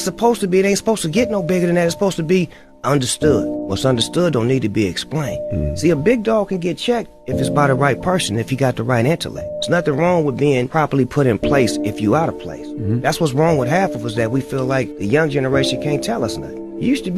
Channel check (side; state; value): both; identical; correlation 1.00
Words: supposed to be. It ain't supposed to get no bigger than that. It's supposed to be understood. What's understood don't need to be explained. See, a big dog can get checked if it's by the right person, if you got the right intellect. There's nothing wrong with being properly put in place if you out of place. That's what's wrong with half of us, that we feel like the young generation can't tell us nothing. You used to